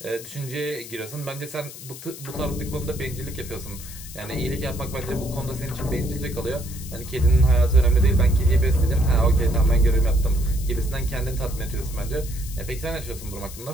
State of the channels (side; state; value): left; noise; hiss, 14 dB below the sound